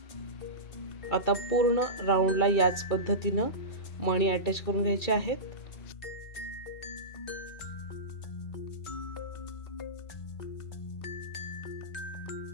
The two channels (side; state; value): right; late; 2.3 ms